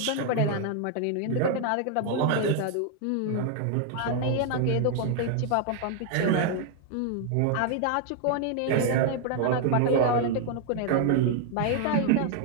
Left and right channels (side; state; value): both; different; correlation 0.00